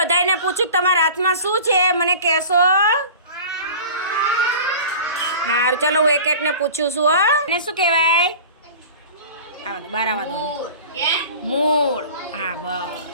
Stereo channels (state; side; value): inverted; both; correlation -0.39